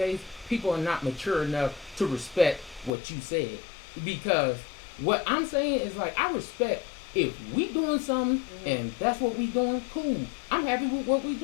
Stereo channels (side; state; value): right; drops out; at 2.9 s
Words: people are not mature enough to respect what you said. Because what I'm saying is like I respect if we doing something and that's what we doing, cool. I'm happy with what we